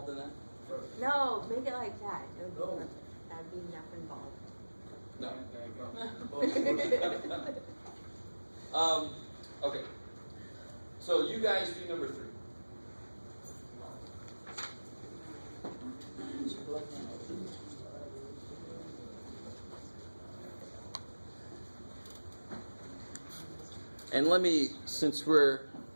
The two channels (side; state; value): both; inverted; correlation -1.00